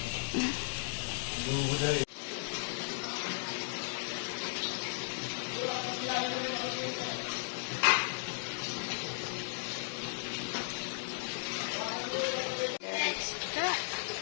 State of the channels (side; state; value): right; silent; digital silence